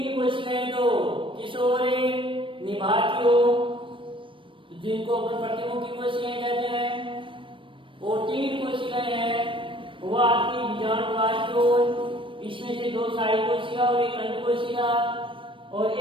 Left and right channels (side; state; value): left; late; 0.25 ms